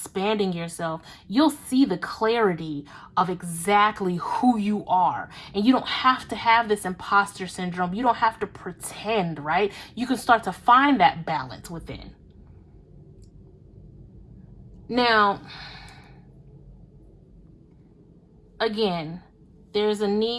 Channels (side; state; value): both; identical; correlation 1.00